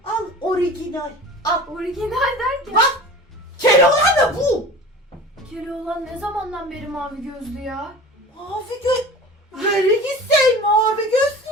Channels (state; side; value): normal; both; correlation 0.37